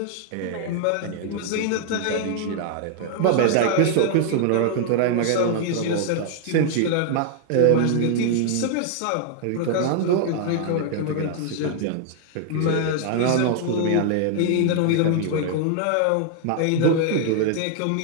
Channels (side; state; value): both; different; correlation 0.00